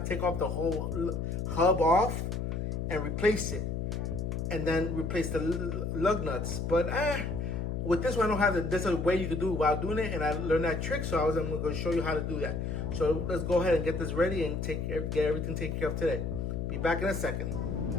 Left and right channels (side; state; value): left; noise; hum, 2 dB below the sound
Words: to take off the whole hub off and replace it. And then replace the lug nuts. But with this one, I don't have it. There's a way you can do it while doing it, and I learned that trick, so I'm going to show you how to do that. So let's go ahead and get this ready and get everything taken care of today. Be back in a second.